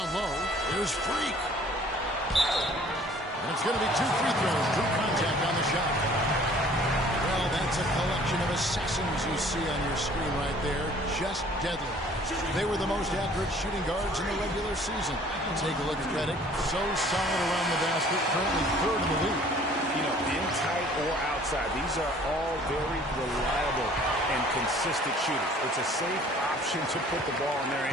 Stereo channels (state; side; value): normal; both; correlation 0.53